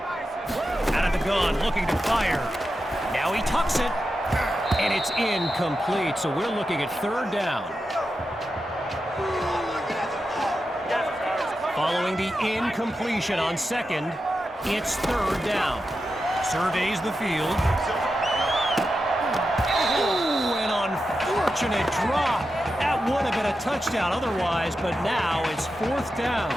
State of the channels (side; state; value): both; normal; correlation 0.89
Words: Out of the gun, looking to fire. Now he tucks it, and it's incomplete, so we're looking at third down. Following the incompletion on second, it's third down. Surveys the field. Fortunate drop. That would have been a touchdown otherwise, but now it's fourth down.